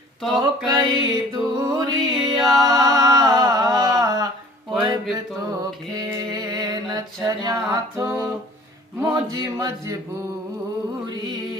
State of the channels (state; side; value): normal; both; correlation 0.50